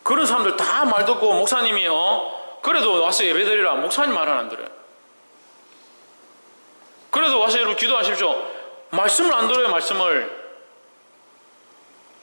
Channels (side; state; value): both; inverted; correlation -1.00